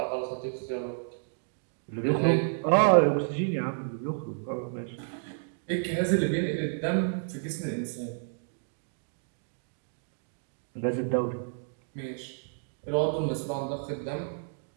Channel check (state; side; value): silent; left; digital silence